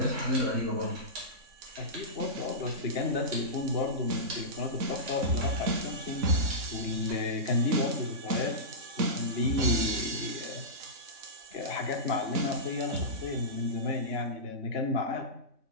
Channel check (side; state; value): left; late; 3.6 ms